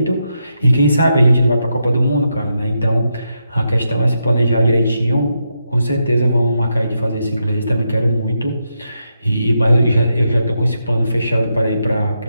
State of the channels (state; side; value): inverted; both; correlation -0.83